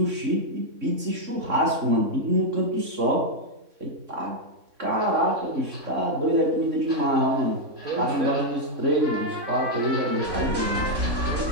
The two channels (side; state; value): left; late; 3.6 ms